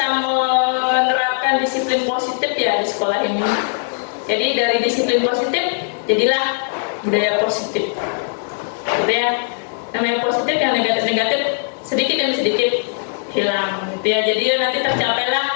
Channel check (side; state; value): right; silent; 66 dB below the other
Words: menerapkan disiplin positif ya di sekolah ini. Jadi dari disiplin positif jadilah budaya positif. Gitu ya. Namanya positif, yang negatif-negatif sedikit demi sedikit hilang gitu ya. Jadi nanti